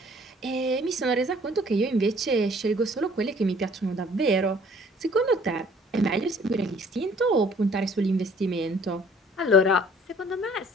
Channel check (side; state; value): both; normal; correlation 0.57